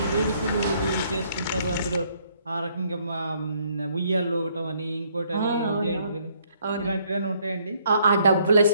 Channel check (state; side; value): inverted; both; correlation -0.67